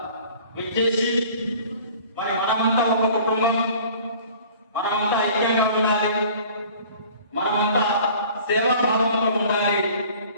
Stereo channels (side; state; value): both; inverted; correlation -0.48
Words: విచ్చేసి మరి మనమంతా ఒక కుటుంబం, మనమంతా ఐక్యంగా ఉండాలి, మనమంతా సేవాభావంతో ఉండాలి